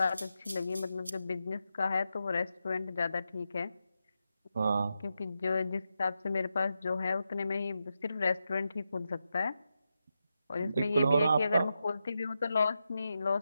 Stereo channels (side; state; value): both; inverted; correlation -0.88